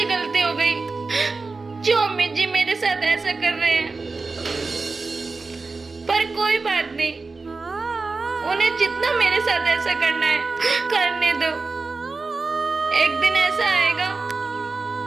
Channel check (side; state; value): left; quieter; 3.9 dB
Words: गलती हो गई जो अम्मी जी मेरे साथ ऐसा कर रहे हैं? पर कोई बात नहीं, उन्हें जितना मेरे साथ ऐसा करना है करने दो। एक दिन ऐसा आएगा